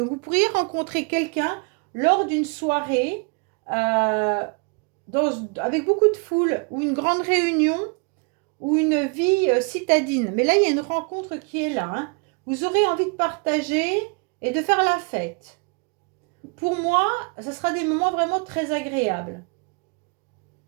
vous pourriez rencontrer quelqu'un lors d'une soirée avec beaucoup de foule ou une grande réunion ou une vie citadine. Mais là, il y a une rencontre qui est là, hein. Vous aurez envie de partager et de faire la fête. Pour moi, ça sera des moments vraiment très agréables.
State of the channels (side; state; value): left; quieter; 32.9 dB